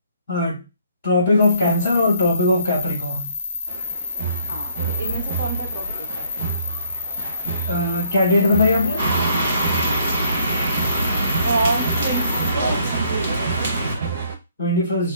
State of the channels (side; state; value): both; inverted; correlation -0.63